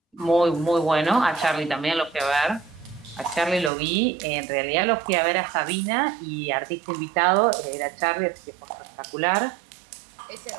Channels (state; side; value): drops out; left; at 3.7 s